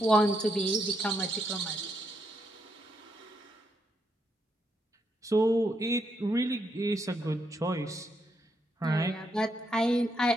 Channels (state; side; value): normal; both; correlation 0.79